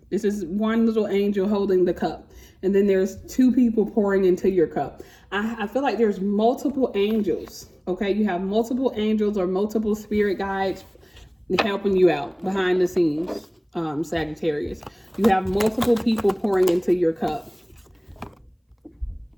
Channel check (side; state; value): both; identical; correlation 1.00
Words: This is one little angel holding the cup. And then there's 2 people pouring into your cup. I feel like there's multiple angels, okay? You have multiple angels or multiple spirit guides helping you out behind the scenes, Sagittarius. You have multiple people pouring into your cup.